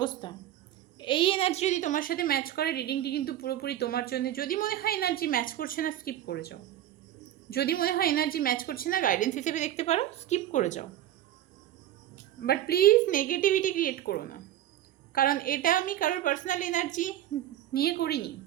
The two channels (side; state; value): left; quieter; 12.4 dB